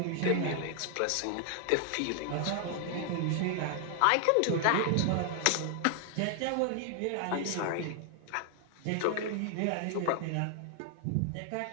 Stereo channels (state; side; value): different; both; correlation 0.00